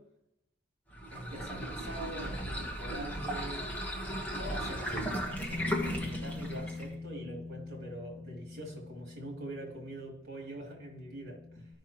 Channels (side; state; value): both; normal; correlation 0.57